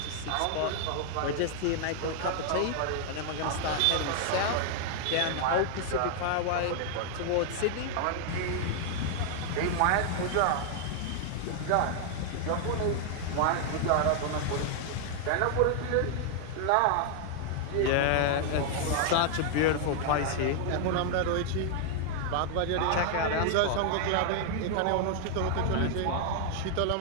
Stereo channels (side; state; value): both; different; correlation 0.00